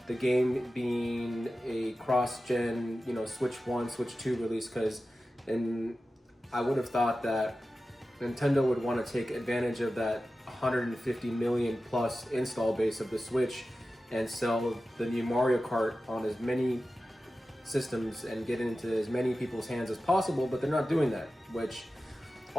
the game being a cross-gen, Switch 1, Switch 2 release, and I would have thought that Nintendo would want to take advantage of that 150 million plus install base of the Switch and sell the new Mario Kart on as many systems and get into as many people's hands as possible, but they're not doing that, which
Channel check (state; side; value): normal; both; correlation 0.94